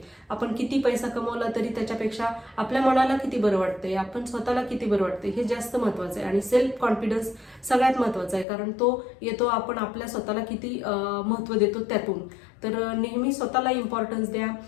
आपण किती पैसा कमवला तरी त्याच्यापेक्षा आपल्या मनाला किती बरं वाटतंय, आपण स्वतःला किती बरं वाटतंय हे जास्त महत्वाचं आहे. आणि सेल्फ कॉन्फिडन्स सगळ्यात महत्वाचा आहे, कारण तो येतो आपण आपल्या स्वतःला किती महत्व देतो त्यातून. तर नेहमी स्वतःला इम्पॉर्टन्स द्या,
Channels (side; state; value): right; drops out; at 8.5 s